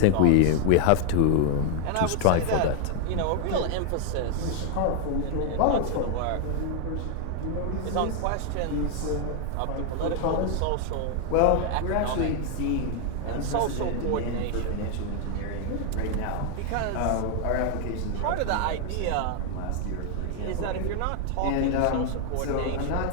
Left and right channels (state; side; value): different; both; correlation 0.00